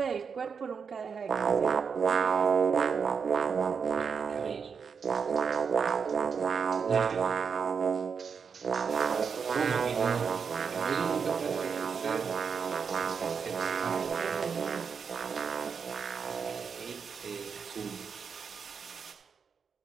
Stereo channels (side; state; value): left; quieter; 6.1 dB